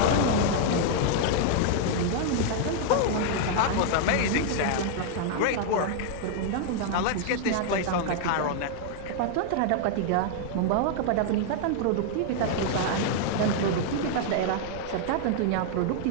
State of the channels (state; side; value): different; both; correlation 0.00